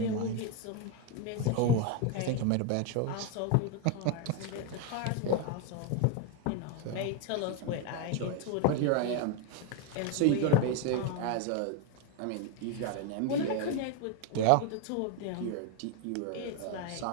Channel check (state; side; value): different; both; correlation 0.01